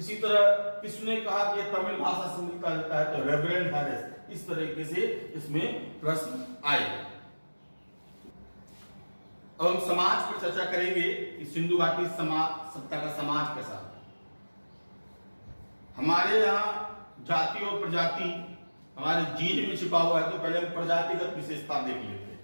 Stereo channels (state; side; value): inverted; both; correlation -1.00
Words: तरह किसने कहा कि तमिल भाषा से मिलता जुलता है, तो रेवरेंड हैरिस। इस तरीके से इसमें प्रश्न आए। अब हम समाज पर चर्चा करेंगे कि सिंधु घाटी सभ्यता का समाज कैसा है। हमारे यहाँ जाति और प्रजाति हमारे जीन में छिपा हुआ है, तो पहले हम प्रजातिगत विशेषता देख लेते हैं।